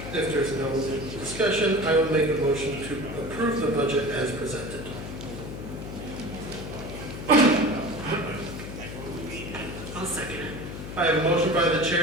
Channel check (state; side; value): noise; left; hum, 9 dB below the sound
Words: If there's no discussion, I will make a motion to approve the budget as presented. I'll second it. I have a motion by the